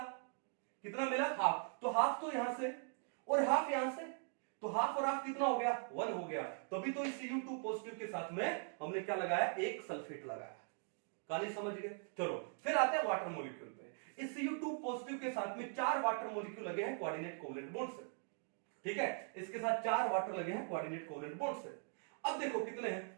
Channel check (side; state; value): left; silent; 50 dB below the other